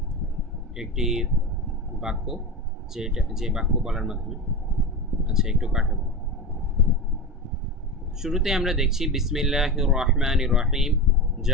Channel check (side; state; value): both; normal; correlation 0.22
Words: একটি বাক্য, যে বাক্য বলার মাধ্যমে, আচ্ছা একটু কাটাবো। শুরুতে আমরা দেখছি বিসমিল্লাহির রহমানির রহিম,